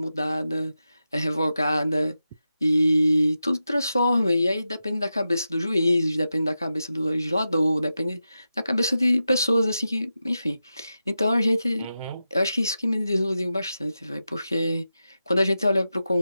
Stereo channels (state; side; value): inverted; both; correlation -0.90